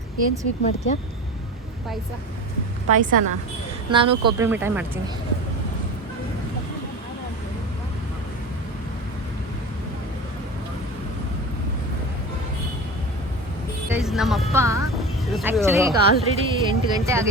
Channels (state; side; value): normal; both; correlation 0.31